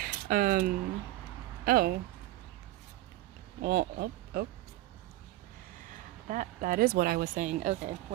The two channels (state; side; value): quieter; left; 16.3 dB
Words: Oh. Well, oh. That is what I was saying. Okay,